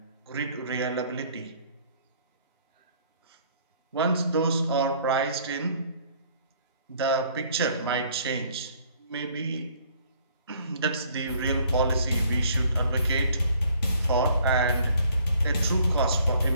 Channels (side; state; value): both; inverted; correlation -0.60